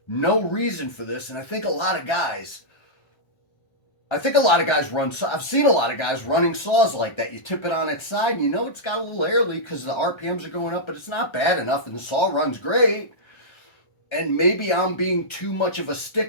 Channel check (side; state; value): right; late; 1.3 ms